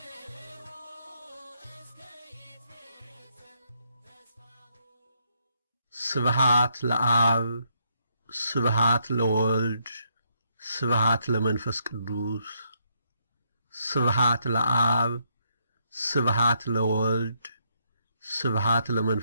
ስብሐት ለአብ ስብሐት ለወልድ ስብሐት ለመንፈስ ቅዱስ ስብሐት ለአብ ስብሐት ለወልድ ስብሐት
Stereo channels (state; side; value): inverted; both; correlation -0.75